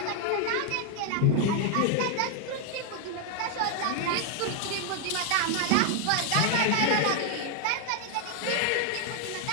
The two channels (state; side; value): different; both; correlation 0.00